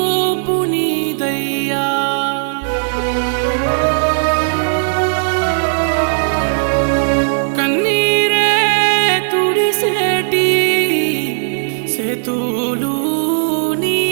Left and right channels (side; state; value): left; silent; digital silence